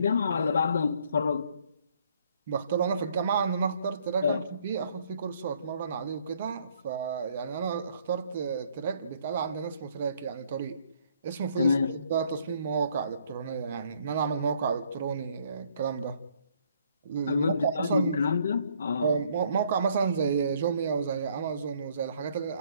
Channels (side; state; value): both; inverted; correlation -0.65